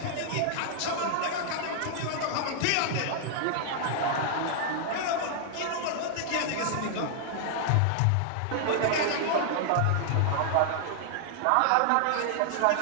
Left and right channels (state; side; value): different; both; correlation -0.01